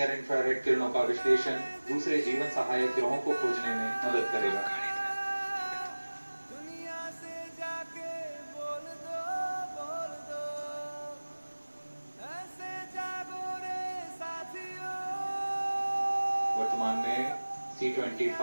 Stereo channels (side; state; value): both; inverted; correlation -1.00